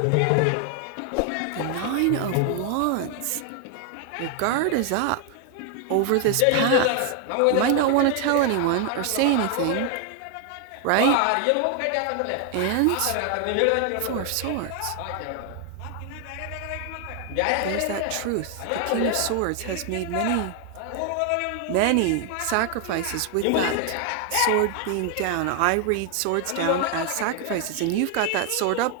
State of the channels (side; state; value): both; different; correlation 0.00